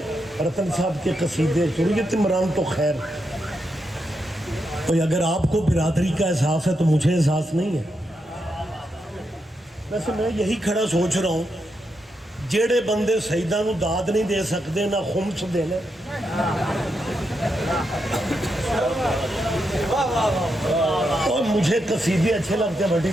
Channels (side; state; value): both; normal; correlation 0.84